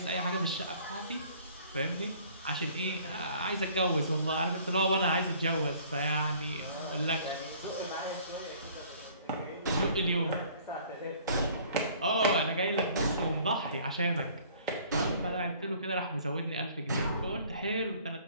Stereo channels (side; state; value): both; inverted; correlation -0.54